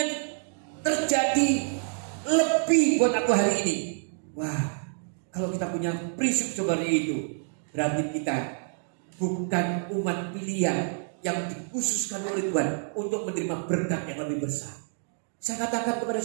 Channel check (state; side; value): silent; left; digital silence